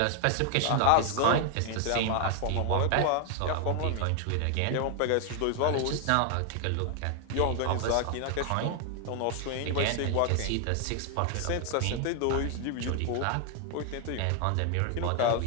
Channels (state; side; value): different; both; correlation 0.00